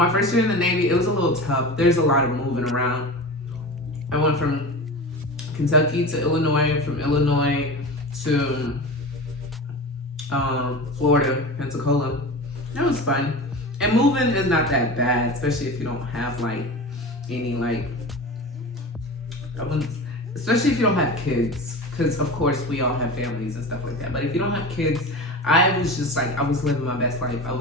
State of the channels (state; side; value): normal; both; correlation 0.30